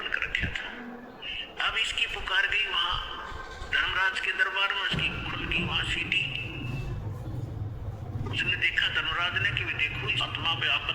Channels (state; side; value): identical; both; correlation 1.00